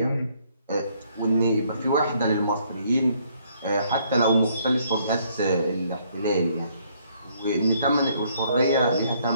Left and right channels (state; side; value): inverted; both; correlation -0.67